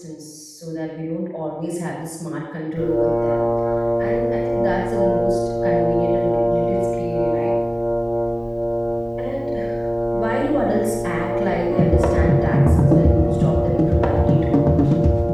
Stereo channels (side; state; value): both; identical; correlation 1.00